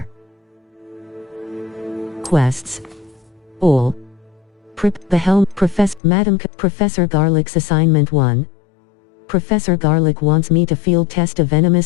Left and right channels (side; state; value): right; drops out; at 6.0 s